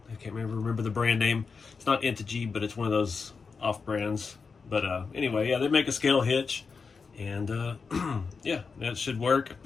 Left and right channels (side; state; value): right; quieter; 5.0 dB